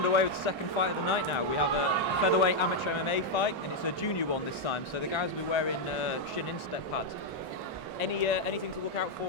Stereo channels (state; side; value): normal; both; correlation 0.00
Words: with the second fight of the night now. We have a featherweight amateur MMA fight, and it's a junior one this time. So the guys will be wearing shin instep pads. Anything to look out